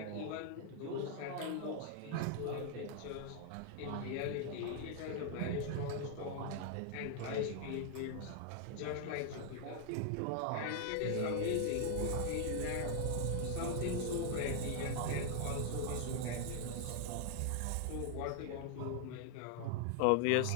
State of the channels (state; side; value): different; both; correlation 0.00